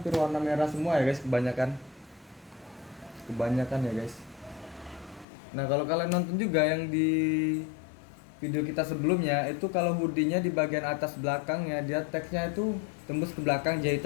warna merah semua ya guys, kebanyakan ya guys. Nah kalau kalian nonton juga yang di video kita sebelumnya itu, kalau hoodie-nya di bagian atas belakangnya dia teksnya itu tembus ke belakang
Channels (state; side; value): drops out; right; at 5.2 s